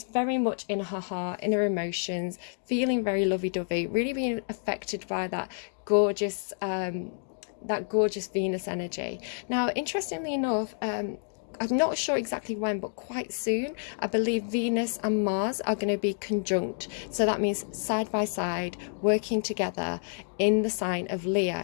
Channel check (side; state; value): right; silent; 59 dB below the other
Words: very much in her heart, in her emotions, feeling very lovey-dovey, really being affected by that gorgeous Venus energy. Now, interestingly enough, I'm not sure exactly when, but quite soon, I believe Venus and Mars are going to be conjunct. So that means side by side, working together in the sign of